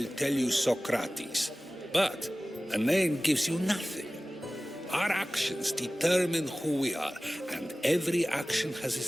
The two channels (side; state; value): both; normal; correlation 0.97